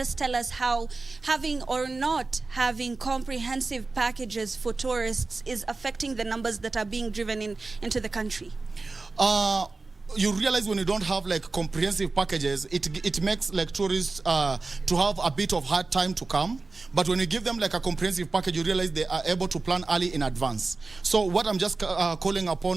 tell us how having or not having comprehensive packages for tourists is affecting the numbers that are being driven into the country? You realize when you don't have like comprehensive packages, it makes like tourists to have a bit of hard time to come. But when you give them like a comprehensive package, you realize they are able to plan early in advance. So what I'm just calling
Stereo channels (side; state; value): left; quieter; 3.7 dB